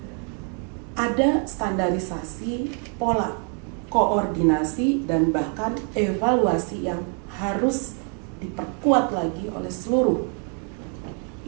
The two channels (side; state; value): left; quieter; 39.4 dB